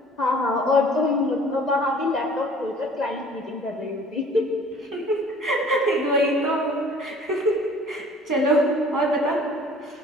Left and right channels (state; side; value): normal; both; correlation 0.51